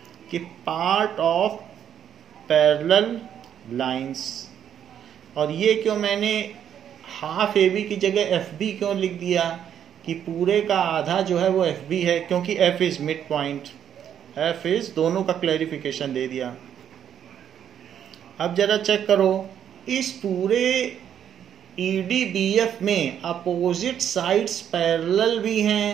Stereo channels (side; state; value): left; quieter; 9.3 dB